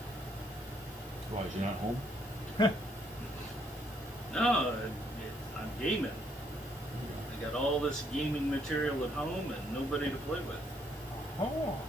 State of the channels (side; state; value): both; normal; correlation 0.70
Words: Why, is you not home? No, I'm gaming. I got all this gaming material at home and nobody to play with. Oh.